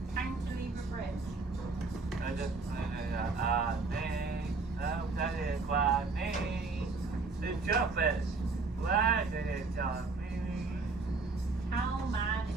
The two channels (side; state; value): left; quieter; 3.9 dB